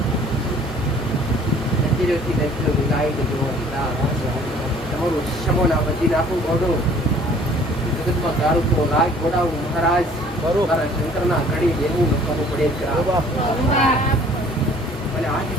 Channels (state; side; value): normal; both; correlation 0.54